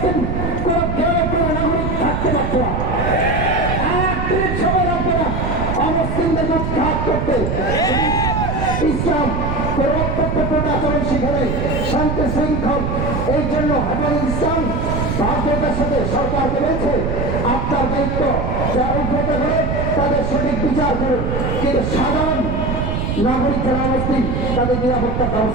কোনো গ্রামে কোনো নাগরিক থাকতে পারছে না। 31 সময় লাগবে না অমুসলিমদের উৎখাত করতে। ইসলাম পরিবর্তন আচরণ শিখাবে, শান্তি শৃঙ্খল। এই জন্য হেফাজত ইসলাম বাধ্যতার সাথে সরকারকে বলছে আপনার দায়িত্ব যারা উদ্ভূত করে তাদের সঠিক বিচার করুন, কিন্তু সাধারণ নাগরিক যারা অবস্থিত তাদের নিরাপত্তার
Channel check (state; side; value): noise; right; rumble, 1 dB below the sound